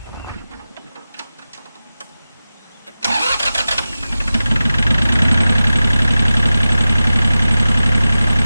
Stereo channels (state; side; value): inverted; both; correlation -0.95